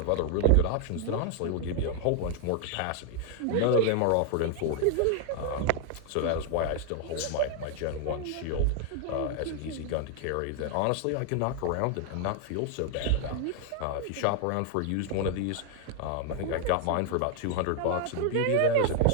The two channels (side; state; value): both; different; correlation 0.00